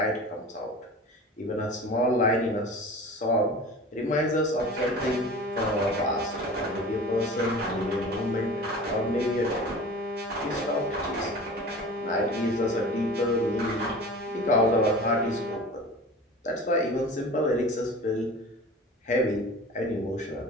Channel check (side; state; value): both; normal; correlation 0.38